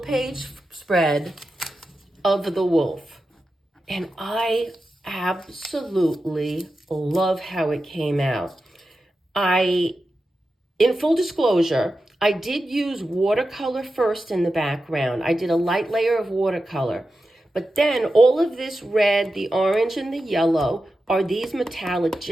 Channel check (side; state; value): both; normal; correlation 0.91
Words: page spread of the wolf. And I absolutely love how it came out. In full disclosure, I did use watercolor first in the background. I did a light layer of watercolor, But then all of this red, the orange, and the yellow are these metallic